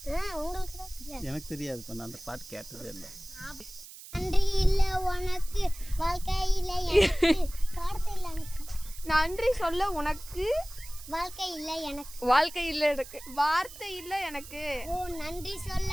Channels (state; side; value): noise; right; hiss, 16 dB below the sound